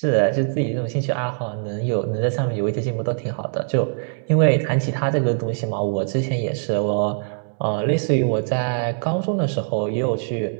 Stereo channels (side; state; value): left; silent; 64 dB below the other